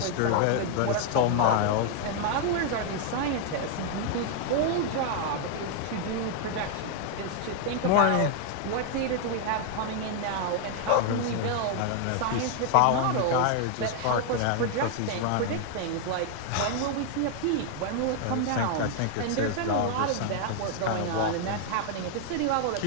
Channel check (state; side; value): different; both; correlation 0.00